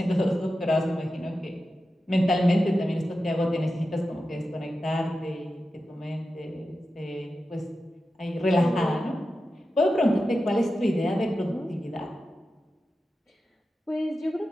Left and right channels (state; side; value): normal; both; correlation 0.92